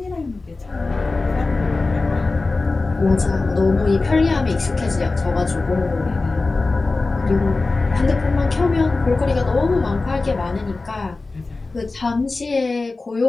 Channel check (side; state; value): right; quieter; 3.5 dB